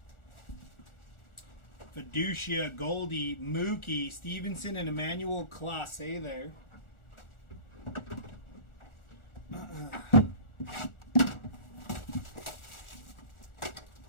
Fiducia, Goldie, Mookie, Stevenson, and Emmanuel Clase there.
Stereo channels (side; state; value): right; late; 1.4 ms